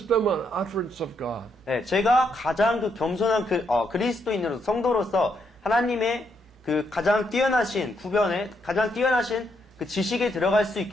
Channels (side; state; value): both; normal; correlation 0.77